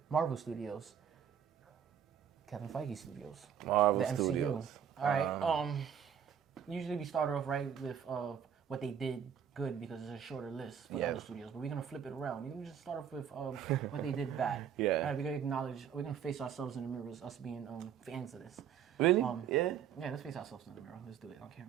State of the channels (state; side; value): quieter; left; 8.5 dB